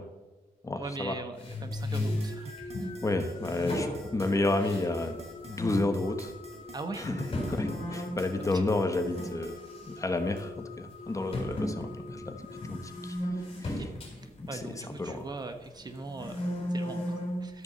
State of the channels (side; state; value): both; normal; correlation 0.81